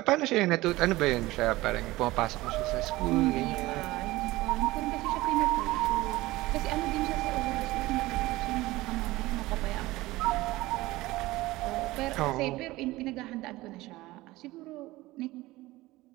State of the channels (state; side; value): quieter; left; 18.9 dB